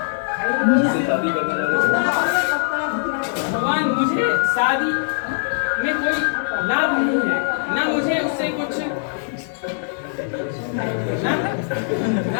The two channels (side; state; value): right; silent; 65 dB below the other